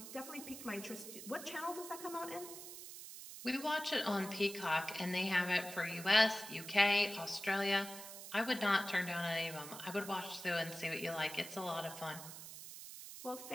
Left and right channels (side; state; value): right; noise; hiss, 11 dB below the sound